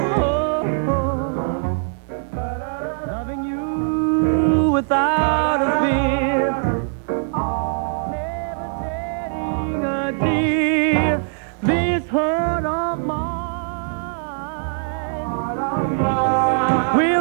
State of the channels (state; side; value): silent; left; 65 dB below the other